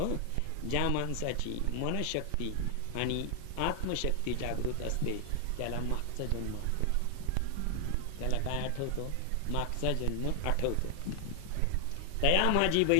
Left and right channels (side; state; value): both; different; correlation 0.00